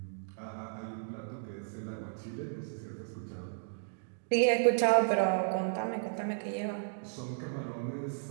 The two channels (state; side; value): silent; left; digital silence